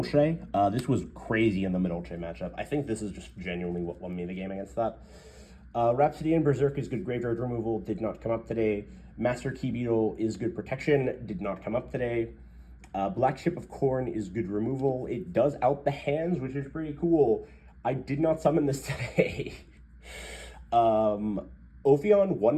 This was crazy in the Madolche matchup. I think this is just genuinely what won me the game against that. Rhapsody and Berserk is good graveyard removal, did not come up today. Master Key Beetle is good protection, did not come up today. Black Chip of Corn is good removal. It does out the hands, which is pretty cool. I did not summon this today. Ophion won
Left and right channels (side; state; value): both; identical; correlation 1.00